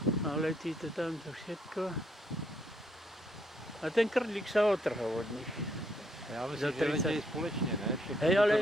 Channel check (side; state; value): both; normal; correlation 0.73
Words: A letí to tamto všetko. A ten krdlík sa otrhol od nich. Já Za myslím, že 30. letějí společně, ne? Všechny Hej, to ale